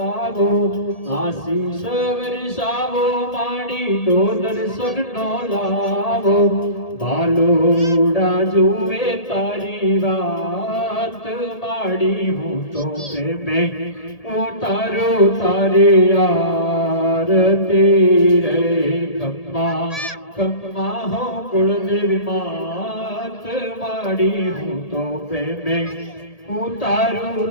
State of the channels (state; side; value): late; right; 1.8 ms